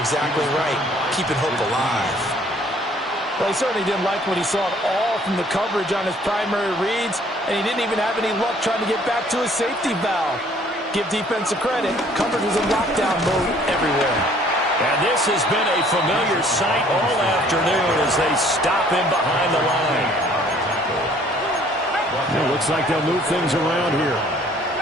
exactly right. Keeping hope alive. Well, he certainly didn't like what he saw at all from the coverage on his primary reads, and he didn't even have any luck trying to get back to his safety valve. Give defensive credit. Coverage was in lockdown mode everywhere. And this has been a familiar sight all afternoon as they stop him behind the line. It looks like they'll move things around here.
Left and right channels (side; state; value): both; normal; correlation 0.58